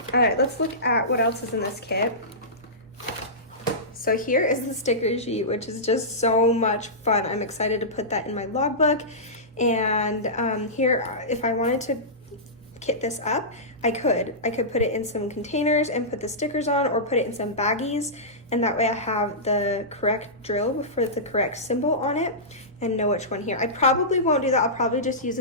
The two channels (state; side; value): normal; both; correlation -0.17